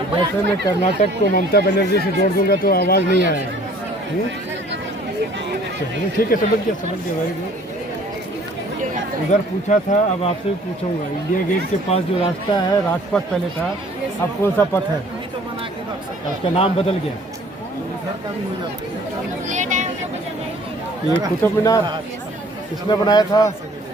जैसे मैं कर्नाटक को ममता बनर्जी से जोड़ दूंगा तो आवाज़ नहीं आएगी। चलिए ठीक है, समझ गया वेरी गुड। उधर पूछा था, अब आपसे भी पूछूंगा। इंडिया गेट के पास जो रास्ता है, राजपथ पहले था, अब कौन सा पथ है? उसका नाम बदल गया। ये कुतुब मीनार किसने बनाया था?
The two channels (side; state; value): both; normal; correlation 0.54